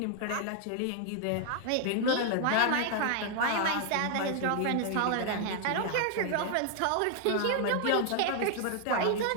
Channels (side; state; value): both; different; correlation 0.00